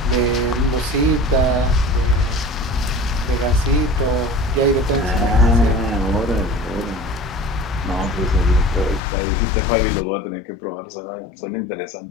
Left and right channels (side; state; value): right; drops out; at 9.0 s